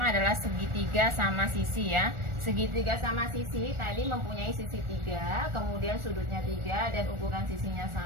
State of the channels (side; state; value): left; late; 1.4 ms